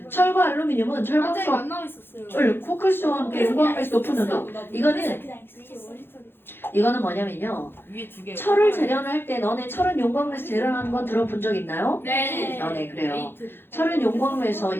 철과 알루미늄은 철광석 안 나와 있었어요. 코크스와 함께 용광에서 높은 온도. 이거는 뭐냐면요. 위에 2개. 철을 재련할 때 너네 철은 용광로에서 재련하는 건 들어본 적 있나요? 네. 네 그래요. 철은 용광로에서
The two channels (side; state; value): right; late; 0.10 ms